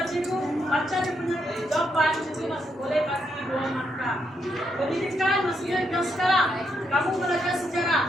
cikgu baca dia punya jawaban, cikgu masih boleh bagi 2 markah. Pendidikan maksudnya yang sekarang kamu belajar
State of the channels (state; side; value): normal; both; correlation 0.79